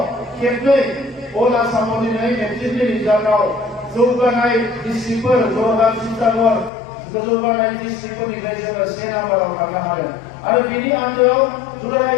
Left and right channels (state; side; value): drops out; right; at 6.7 s